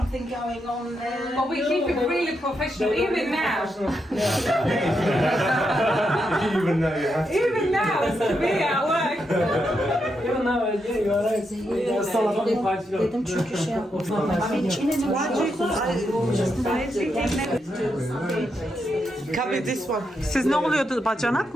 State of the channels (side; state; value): both; normal; correlation 0.83